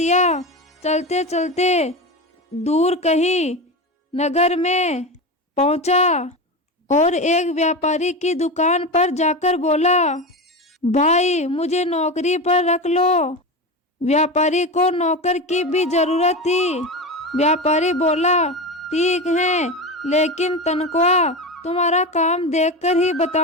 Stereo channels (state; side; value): normal; both; correlation 0.22